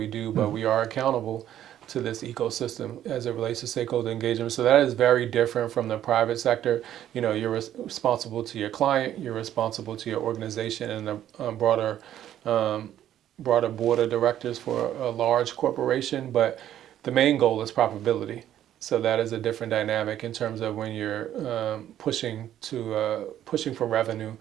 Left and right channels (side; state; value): left; quieter; 11.5 dB